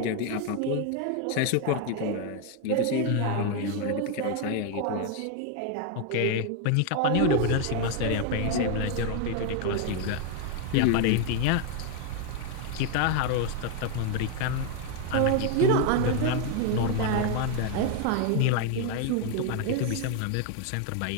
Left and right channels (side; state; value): both; different; correlation 0.01